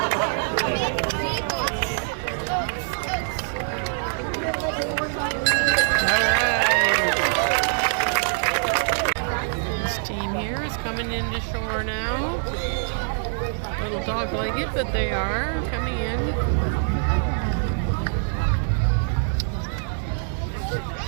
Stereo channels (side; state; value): left; silent; digital silence